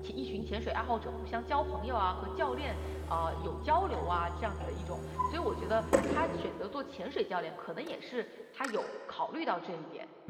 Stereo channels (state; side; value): identical; both; correlation 1.00